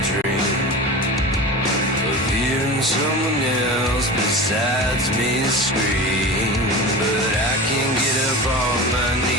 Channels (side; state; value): both; normal; correlation 0.31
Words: dream of hearing someone else besides me scream. But I can't get up on my